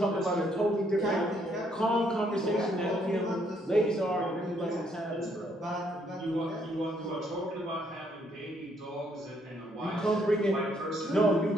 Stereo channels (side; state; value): both; normal; correlation 0.70